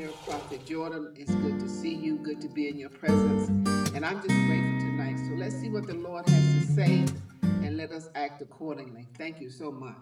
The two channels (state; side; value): identical; both; correlation 1.00